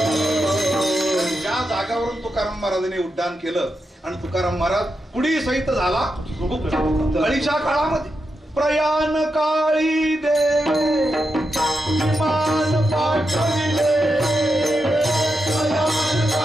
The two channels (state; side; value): normal; both; correlation 0.86